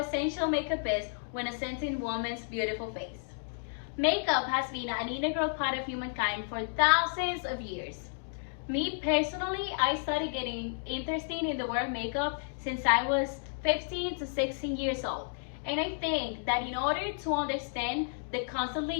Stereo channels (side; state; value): right; silent; digital silence